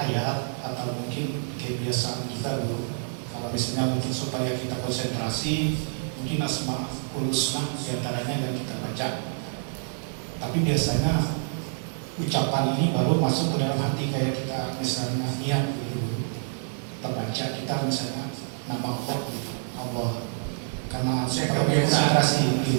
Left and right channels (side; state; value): left; silent; digital silence